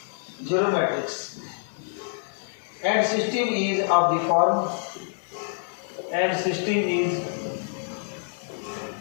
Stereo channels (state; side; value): silent; right; digital silence